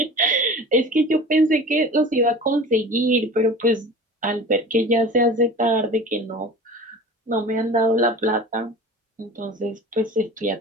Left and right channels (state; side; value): normal; both; correlation 0.37